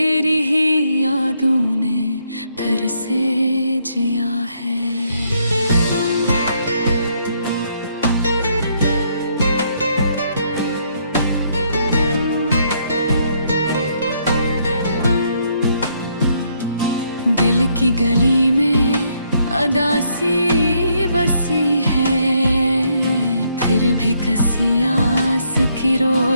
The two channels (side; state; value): both; inverted; correlation -0.72